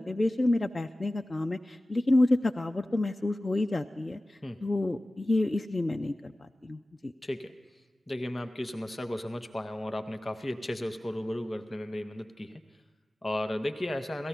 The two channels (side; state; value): both; normal; correlation 0.97